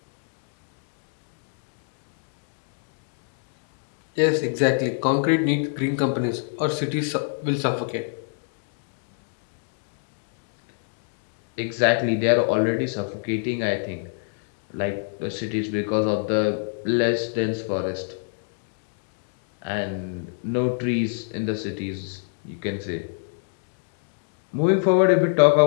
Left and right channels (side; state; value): right; silent; digital silence